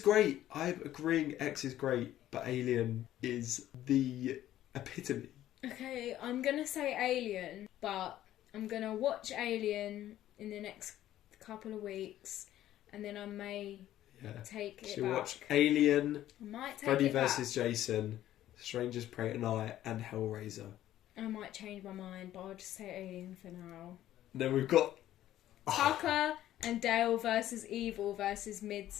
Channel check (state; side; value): quieter; right; 13.0 dB